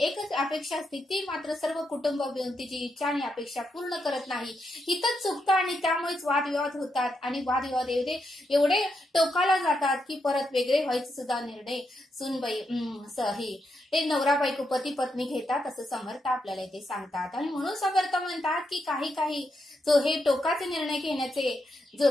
अपेक्षा असते, ती मात्र सर्व कुटुंब मिळून तिची इच्छा आणि अपेक्षा पूर्ण करत नाही। इथंच चुकतं आणि त्यामुळेच वादविवाद होतात आणि वादविवाद एवढे टोकाला जातात की परत वेगळे व्हायचे सुद्धा निर्णय सुनबाई ते नवरा बायको पती पत्नी घेतात, असं समर्थ आपल्याला इथे सांगतात। आणि म्हणून समर्थ म्हणतात की काही जो हे टोकाचे निर्णय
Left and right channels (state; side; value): normal; both; correlation 0.82